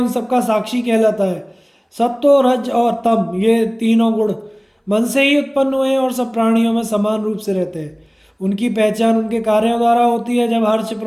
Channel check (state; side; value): identical; both; correlation 1.00